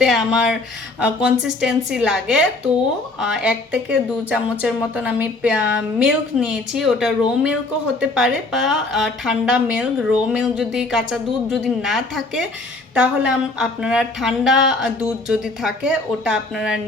আমার কনসিস্টেন্সি লাগে। তো 1 থেকে 2 চামচের মতন আমি মিল্ক নিয়েছি। ওটা রো মিল্কও হতে পারে বা ঠান্ডা মিল্ক। রো মিল্ক যদি কাঁচা দুধ যদি না থাকে তাহলে আপনারা ঠান্ডা দুধ যদি থাকে ওটা আপনারা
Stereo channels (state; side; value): quieter; right; 3.1 dB